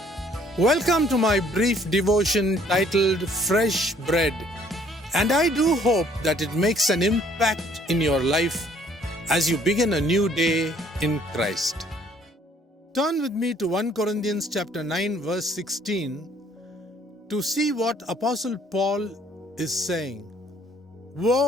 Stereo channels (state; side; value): normal; both; correlation 0.61